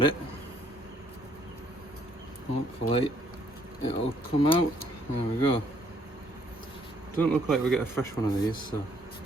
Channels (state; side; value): normal; both; correlation 0.66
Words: it. Hopefully it'll come out. There we go. Don't look like we get a fresh one of these, so